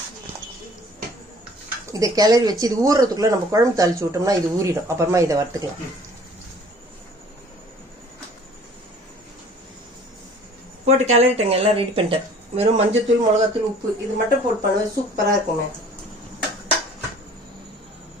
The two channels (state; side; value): normal; both; correlation 0.52